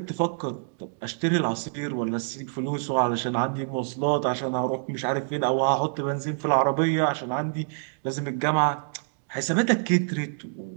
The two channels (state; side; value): silent; left; digital silence